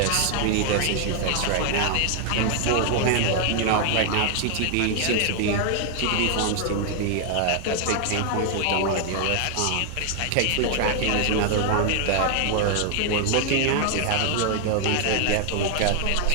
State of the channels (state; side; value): different; both; correlation 0.00